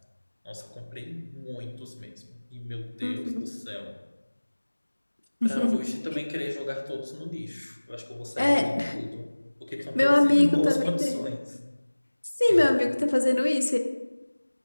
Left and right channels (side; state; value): both; inverted; correlation -1.00